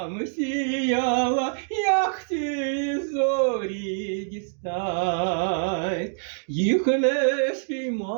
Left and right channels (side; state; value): left; silent; digital silence